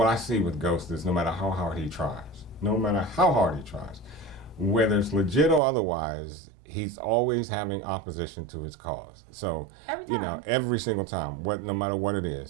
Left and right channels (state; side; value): drops out; left; at 5.6 s